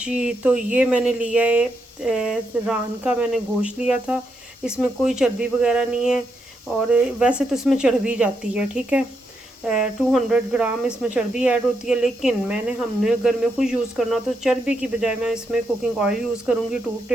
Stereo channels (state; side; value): normal; both; correlation 0.81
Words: तो ये मैंने लिया है रान का मैंने गोश्त लिया था। इसमें कोई चर्बी वगैरह नहीं है, और वैसे तो इसमें चर्बी जाती है। ठीक है, 200 ग्राम इसमें चर्बी ऐड होती है, लेकिन हमने अगर में खुद यूज़ करना तो चर्बी की बजाय मैं इसमें कुकिंग ऑयल यूज़ करूँगी 2